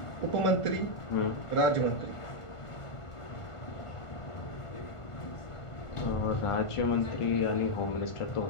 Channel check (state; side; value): late; right; 1.4 ms